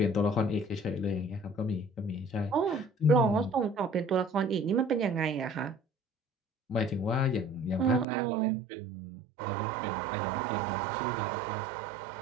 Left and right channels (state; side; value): drops out; left; at 8.1 s